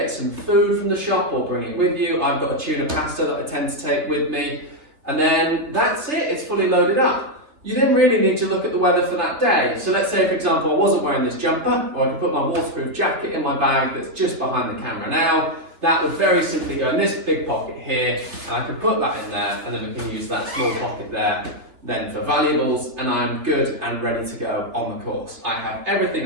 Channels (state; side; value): late; left; 3.6 ms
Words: some food from the shop or bring it with you. I've got a tuna pasta that I tend to take with me. And then that's it, it's fully loaded up. You then really need to look at the weather for that day. So let's say, for example, I wasn't wearing this jumper, or I could put my waterproof jacket in my bag that's just behind the camera now. That would very simply go in this big pocket here, and I could put that in there, and then we can use that small pocket there then for valuables, and I'm good and ready to go on the course. I have